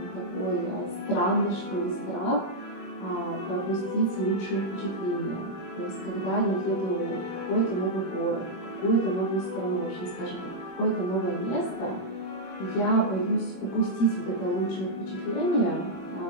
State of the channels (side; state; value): right; late; 26 ms